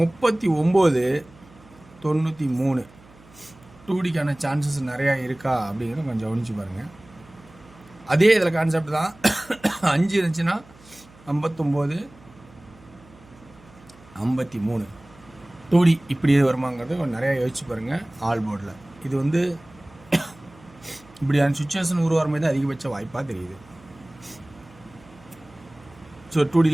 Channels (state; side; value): noise; right; hum, 25 dB below the sound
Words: 2Dக்கான சான்சஸ் நிறையா இருக்கா அப்படிங்கிறத கொஞ்சம் கவனிச்சு பாருங்கள். அதே இதில் கான்செப்ட் தான். 5 இருந்துச்சுன்னா 59-53 2D இப்படி வருமாங்கிறது கொஞ்சம் நிறையா யோசிச்சு பாருங்கள். ஆல் போர்டில் இது வந்து இப்படியான சுச்சுவேஷன் உருவாகிற மாதிரி தான் அதிகபட்ச வாய்ப்பாக தெரியுது. ஸோ